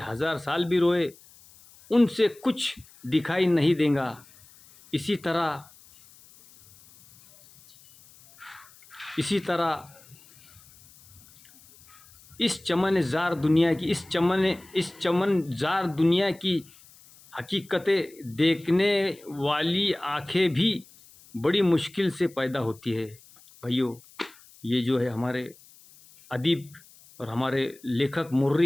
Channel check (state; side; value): noise; left; hiss, 25 dB below the sound